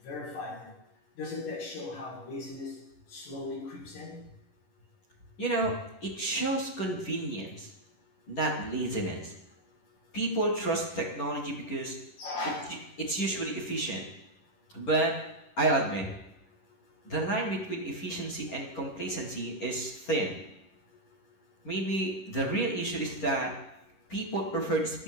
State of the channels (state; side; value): late; right; 11 ms